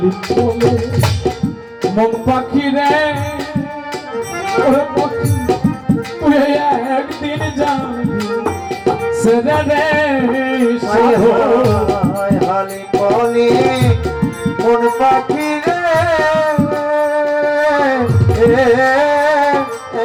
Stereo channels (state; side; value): identical; both; correlation 1.00